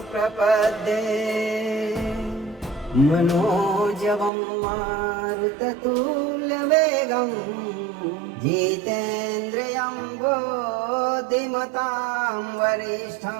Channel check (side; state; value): left; drops out; at 4.3 s